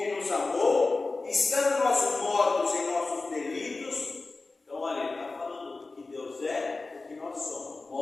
nos amou, estando nós mortos em nossos delitos. Então, olha, ele está falando do que Deus é, do que nós somos,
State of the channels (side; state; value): right; quieter; 3.6 dB